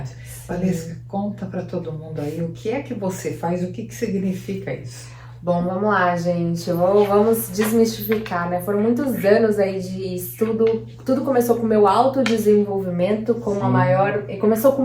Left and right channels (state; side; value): identical; both; correlation 1.00